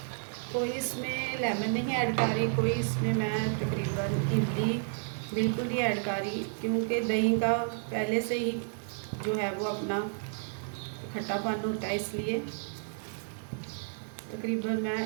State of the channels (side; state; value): left; silent; 57 dB below the other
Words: कोई इसमें लेमन नहीं ऐड कर रही, कोई इसमें मैं तकरीबन इमली बिल्कुल नहीं ऐड कर रही, क्योंकि दही का पहले से ही जो है वो अपना खट्टापन होता है, इसलिए तकरीबन